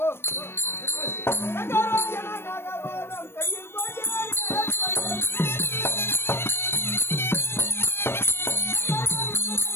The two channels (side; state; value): right; late; 0.12 ms